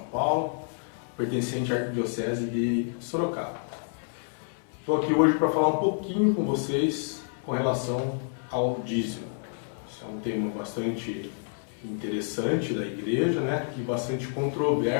Paulo, pertencente à Arquidiocese de Sorocaba. Estou aqui hoje para falar um pouquinho com vocês com relação ao dízimo. Esse é um tema bastante interessante da igreja, né? E bastante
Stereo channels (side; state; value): right; silent; 59 dB below the other